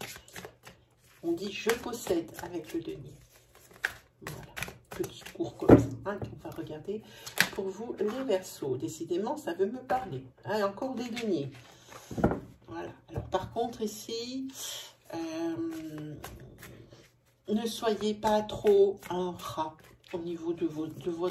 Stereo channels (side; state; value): both; identical; correlation 1.00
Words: On dit « je possède » avec le denier. Voilà, petit cours comme ça, hein, qu'on va regarder pour vous les Verseaux. Décidément, ça veut me parler. Hein, encore des deniers. Voilà. Alors, par contre, ici... ne soyez pas trop un rat au niveau de